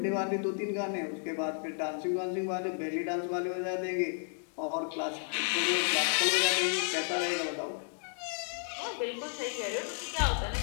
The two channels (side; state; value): right; silent; 55 dB below the other